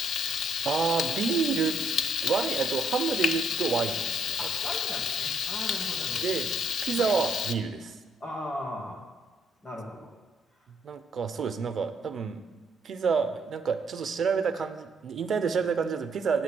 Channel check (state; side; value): normal; both; correlation 0.69